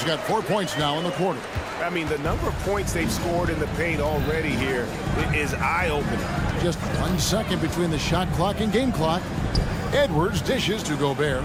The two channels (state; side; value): identical; both; correlation 1.00